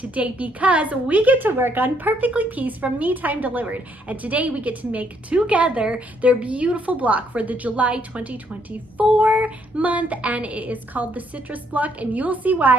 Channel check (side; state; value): both; normal; correlation 0.70